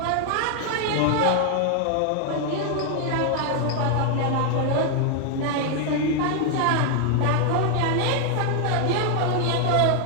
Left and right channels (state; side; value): different; both; correlation 0.00